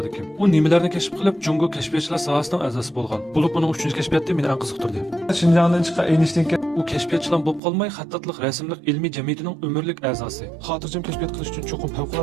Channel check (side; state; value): left; drops out; at 7.6 s